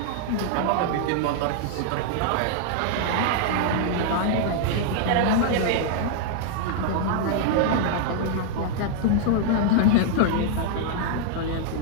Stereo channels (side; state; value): both; different; correlation -0.01